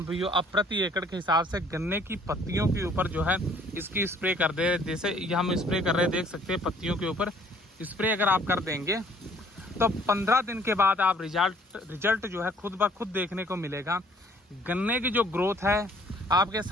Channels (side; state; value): both; normal; correlation 0.59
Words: भाइयों अब प्रति एकड़ के हिसाब से गन्ने की पत्तियों के ऊपर जो है इसकी स्प्रे कर दे। जैसे ये हम स्प्रे कर रहे हैं, देख सकते हैं पत्तियों के ऊपर स्प्रे अगर आप कर देंगे तो 15 दिन के बाद आप रिजल्ट जो है खुद ब खुद देखने को मिलेगा। गन्ने की जो ग्रोथ है आपके